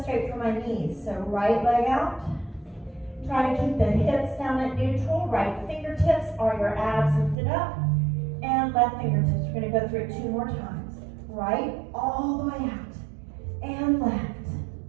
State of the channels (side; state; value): left; drops out; at 7.4 s